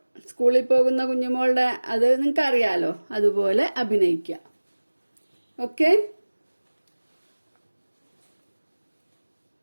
സ്കൂളിൽ പോകുന്ന കുഞ്ഞുമോളുടെ അത് നിങ്ങൾക്ക് അറിയാലോ. അതുപോലെ അഭിനയിക്കുക. ഓക്കെ.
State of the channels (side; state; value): both; inverted; correlation -1.00